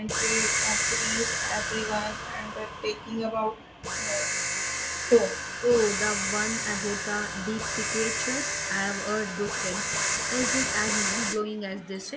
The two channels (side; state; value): both; identical; correlation 1.00